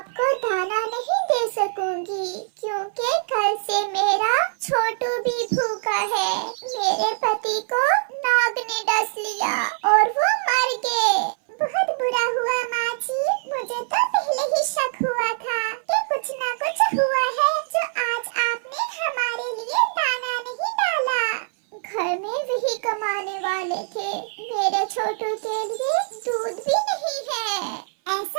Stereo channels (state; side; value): silent; left; 59 dB below the other